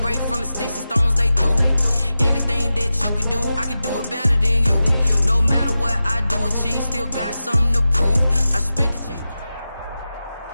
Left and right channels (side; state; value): both; inverted; correlation -0.93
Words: brave from the sticks and stones they threw. Anything that you can do, I can do it better than you. No matter what I do, achieve, still got something to prove. I spent the check.